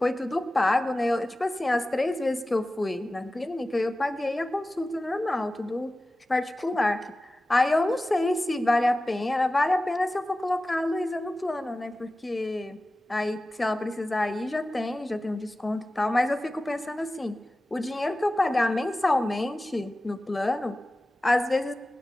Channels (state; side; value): normal; both; correlation 0.96